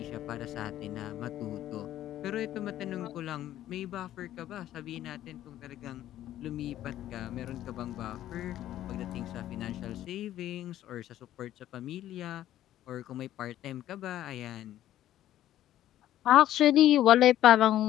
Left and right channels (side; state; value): right; quieter; 12.8 dB